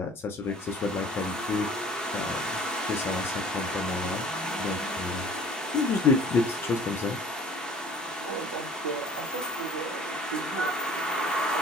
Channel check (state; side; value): normal; both; correlation 0.49